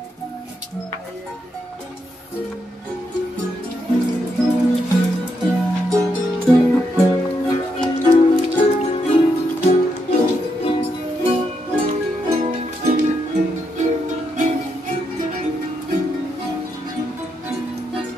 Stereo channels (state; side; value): normal; both; correlation 0.81